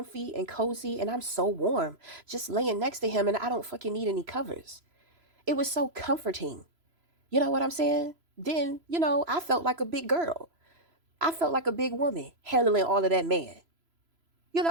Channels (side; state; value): left; late; 3.0 ms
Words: and cozy, and I'm so warm just laying next to him, and I don't fucking need any covers. It was so comforting. You know what I'm saying? Then, I felt like a big girl. I felt like a big woman handling all of that man.